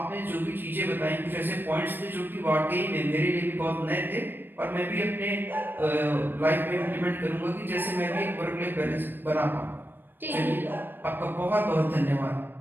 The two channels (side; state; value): left; late; 0.095 ms